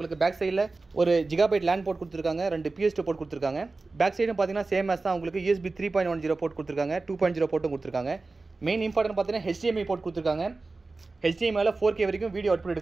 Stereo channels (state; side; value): quieter; left; 3.6 dB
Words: பேக் சைடில் ஒரு ஜிகாபைட் லேண்ட் போர்ட் கொடுத்துருக்காங்க, 2 PS2 போர்ட் கொடுத்துருக்காங்க. பேக் சைடும் பார்த்தீங்கன்னா சேம் மேஸ் தான், உங்களுக்கு USB 3.10 போர்ட் கொடுத்துருக்காங்க, 2.0 போர்ட்டும் கொடுத்துருக்காங்க. மெயின் இம்பார்ட்டன்ட் பார்த்தீங்கன்னா HDMI போர்ட் கொடுத்துருக்காங்க. HDMI 4K வரைக்கும் வீடியோ அவுட்புட்